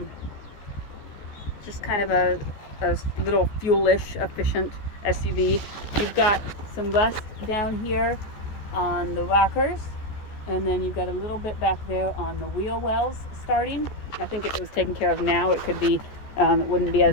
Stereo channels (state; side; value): late; right; 14 ms